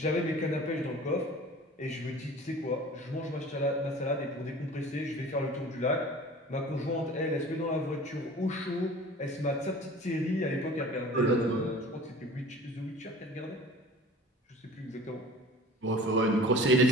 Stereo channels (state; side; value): normal; both; correlation 0.43